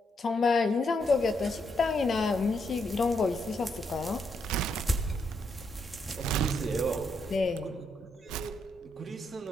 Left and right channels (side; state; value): both; normal; correlation 0.78